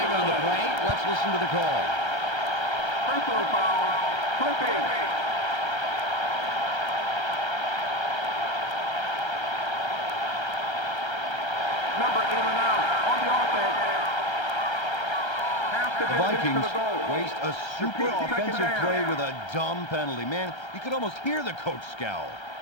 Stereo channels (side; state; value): right; late; 1.3 ms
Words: on the play. Let's listen to the call. Personal foul. Clipping. Number 8 on the offense. The Vikings waste a super offensive play with a dumb penalty. Man, you could almost hear the coach scowl.